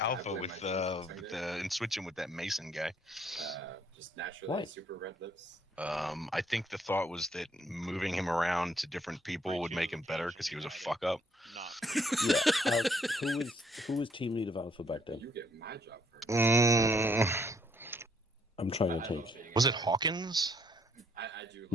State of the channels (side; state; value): both; normal; correlation 0.68